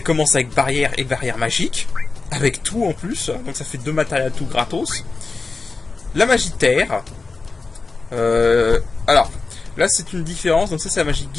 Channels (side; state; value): right; quieter; 4.0 dB